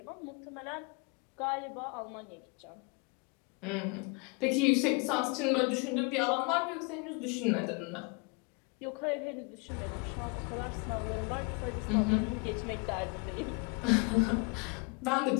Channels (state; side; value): quieter; right; 31.2 dB